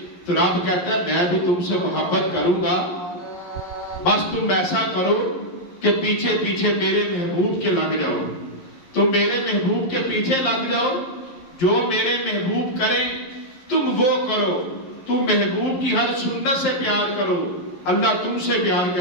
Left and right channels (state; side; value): late; right; 11 ms